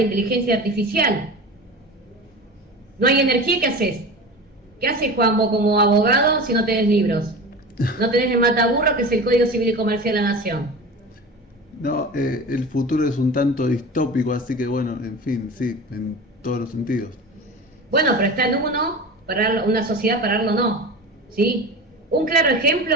inteligencia artificial? No hay energía, ¿qué haces? ¿Qué haces, Juan, vos como abogado si no tenés libros? No tenés el mataburro, que es el Código Civil y Comercial de la Nación. No, el futuro es un tanto distópico, así que bueno, en fin, sí, en todos los sentidos. Bueno, pero está en uno, una sociedad pararlo no, ¿sí? Un claro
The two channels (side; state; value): both; normal; correlation 0.32